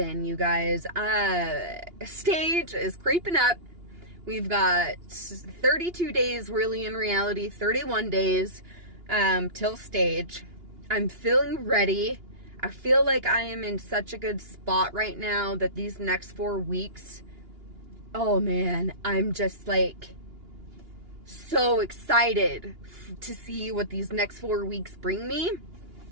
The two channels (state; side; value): late; left; 2.9 ms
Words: you guys. Stage is creeping up. We've got 32 days, really, in reality, 31 days till stage. I'm feeling ready. I feel like I am in such a good spot right now that these next 4 weeks, oh man, I'm just like so excited to see what these next 4 weeks bring me.